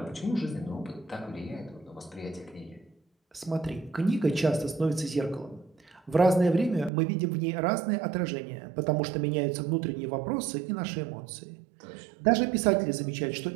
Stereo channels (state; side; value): drops out; left; at 6.9 s